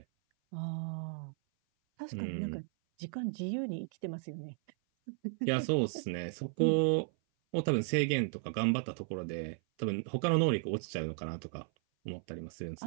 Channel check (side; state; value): left; silent; 54 dB below the other